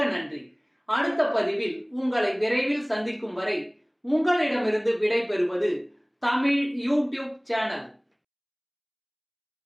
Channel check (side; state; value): both; identical; correlation 1.00